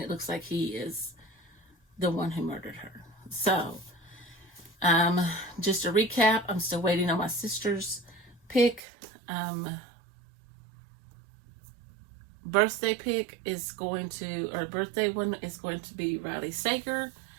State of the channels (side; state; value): left; drops out; at 8.8 s